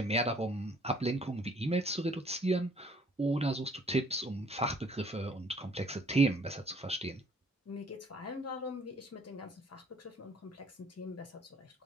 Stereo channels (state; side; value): normal; both; correlation 0.59